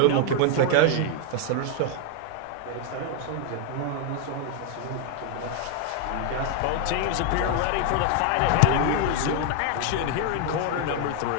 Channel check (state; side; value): different; both; correlation 0.00